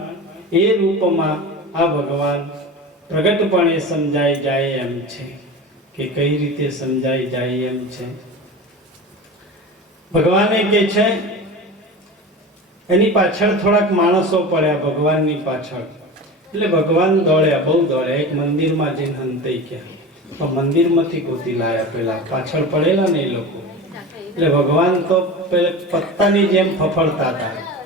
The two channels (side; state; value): both; normal; correlation 0.31